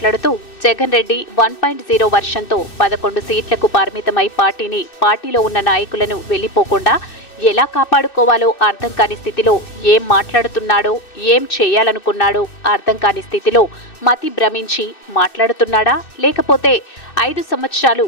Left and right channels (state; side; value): late; right; 2.6 ms